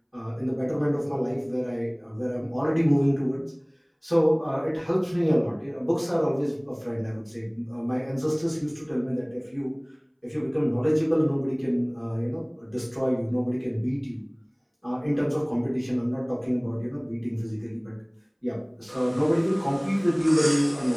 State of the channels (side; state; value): both; identical; correlation 1.00